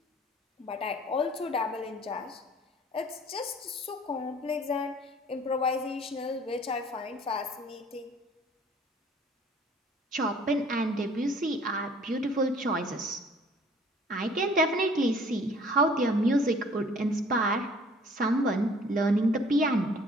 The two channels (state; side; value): normal; both; correlation 0.54